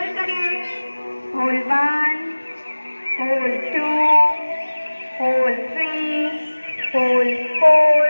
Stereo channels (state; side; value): inverted; both; correlation -1.00